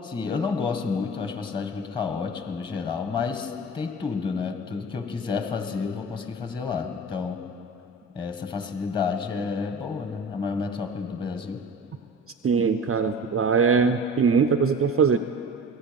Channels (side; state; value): both; normal; correlation 0.37